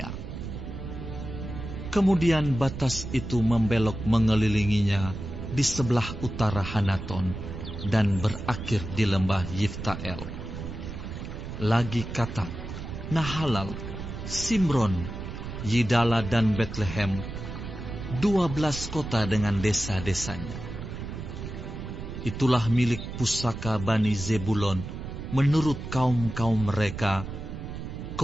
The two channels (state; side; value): noise; right; rumble, 8 dB below the sound